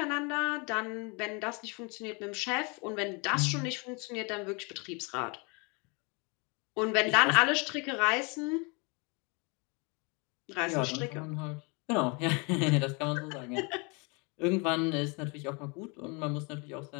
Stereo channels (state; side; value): quieter; right; 30.8 dB